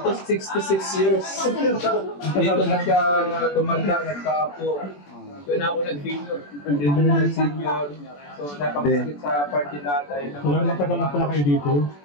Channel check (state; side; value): late; right; 21 ms